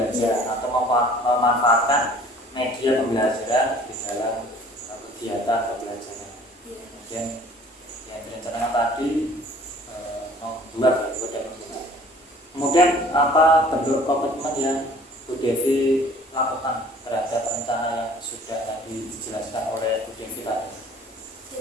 atau memanfaatkan media pembelajaran di dalam kegiatan pembelajaran. Kemudian yang direncanakan tadi membuat kemudian apa bentuk komitmen yang Bu Devi lakukan terhadap rencana yang sudah tadi dijelaskan oleh Bu Devi tadi?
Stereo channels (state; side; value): normal; both; correlation 0.51